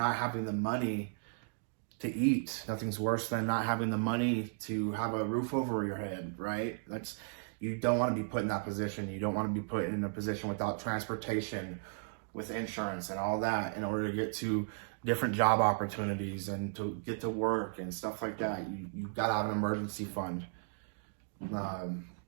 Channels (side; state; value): left; silent; digital silence